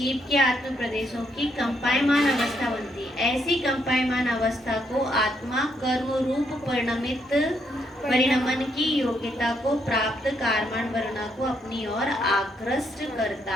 के आत्म प्रदेशों की कंपायमान अवस्था बनती है। ऐसी कंपायमान अवस्था को आत्मा कर्म रूप परिणमन की योग्यता को प्राप्त कार्मण वर्णा को अपनी ओर आकृष्ट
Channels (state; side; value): normal; both; correlation 0.75